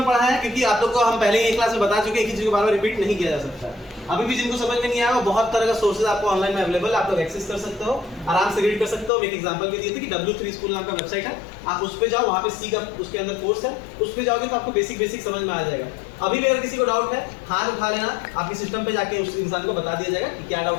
पढ़ा है क्योंकि आप लोग को हम पहले ही एक क्लास में बता चुके हैं, किसी चीज को बार-बार रिपीट नहीं किया जा सकता है। अभी भी जिनको समझ में नहीं आया बहुत तरह का सोर्सेज आपको ऑनलाइन में अवेलेबल है, आप लोग एक्सेस कर सकते हो, आराम से रीड कर सकते हो। एक एग्जांपल भी दिए थे कि W3 स्कूल नाम का वेबसाइट है, आप उस पे जाओ, वहां पे सी का उसके अंदर कोर्स है, उस पे जाओगे तो आपको बेसिक समझ में आ जाएगा। अभी भी अगर किसी को डाउट है हाथ उठा लेना, आपके सिस्टम पे जाके उस इंसान को बता दिया जाएगा कि क्या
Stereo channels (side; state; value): right; drops out; at 9.1 s